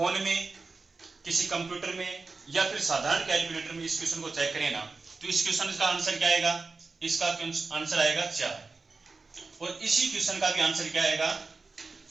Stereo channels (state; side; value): quieter; left; 4.0 dB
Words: में, किसी कंप्यूटर में या फिर साधारण कैलकुलेटर में इस क्वेश्चन को चेक करें ना, तो इस क्वेश्चन का आंसर क्या आएगा, इसका आंसर आएगा 4, और इसी क्वेश्चन का भी आंसर क्या आएगा